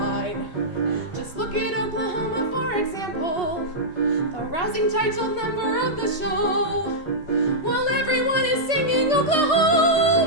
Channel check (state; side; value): late; right; 3.3 ms